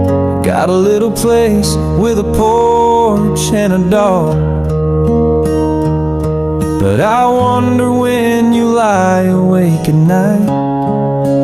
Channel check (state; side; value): noise; right; hum, 27 dB below the sound